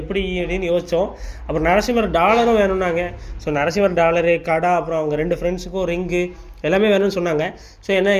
எப்படி அப்படின்னு யோசித்தோம். அப்புறம் நரசிம்மர் டாலரும் வேணும்னாங்க. ஸோ நரசிம்மர் டாலரு கடை, அப்புறம் அவங்க 2 ஃப்ரெண்ட்ஸுக்கும் ரிங்கு எல்லாமே வேணும்னு சொன்னாங்க. ஸோ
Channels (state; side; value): identical; both; correlation 1.00